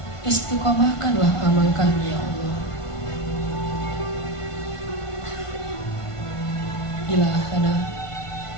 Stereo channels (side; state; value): right; late; 1.5 ms